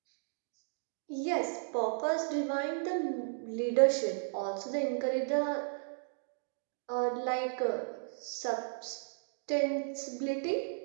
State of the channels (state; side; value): silent; left; digital silence